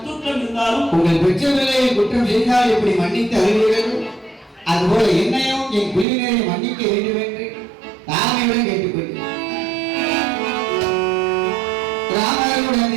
உங்கள் பெற்றவர்களை குற்றம் செய்தால் இப்படி மன்னித்து அறிவீர்கள், அதுபோல என்னையும் என் குழுவினரை மன்னிக்க வேண்டும் என்று தாமையுடன் கேட்டுக்கொள்கிறேன். ராமருடன்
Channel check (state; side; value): drops out; left; at 6.1 s